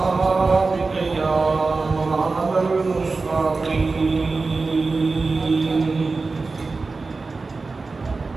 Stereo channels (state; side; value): quieter; left; 3.9 dB